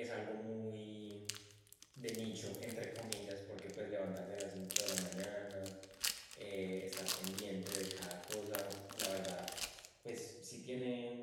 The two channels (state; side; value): identical; both; correlation 1.00